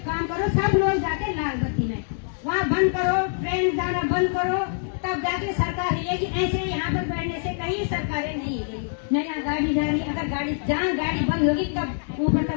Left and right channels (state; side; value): silent; right; digital silence